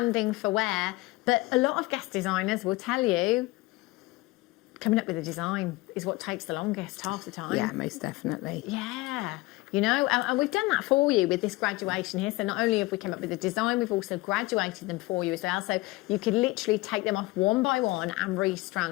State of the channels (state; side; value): quieter; right; 20.6 dB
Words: for wear, but a lot of guest designers will tell you coming up with a design is what takes the longest half the time. Yeah, most definitely. Yeah, you know, and we've done that for you with this graduation here. So not only have we come up with a design, we've also graduated them for you as well. So you could literally take them off one by one and